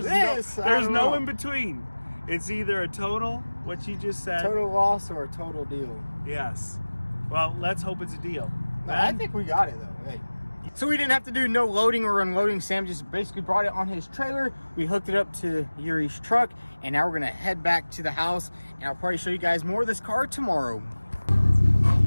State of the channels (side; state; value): both; inverted; correlation -1.00